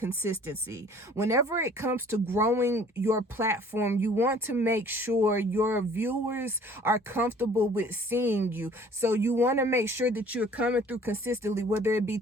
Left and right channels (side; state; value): both; normal; correlation 0.52